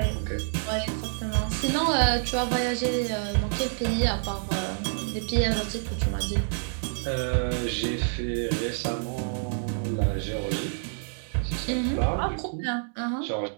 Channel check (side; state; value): left; silent; digital silence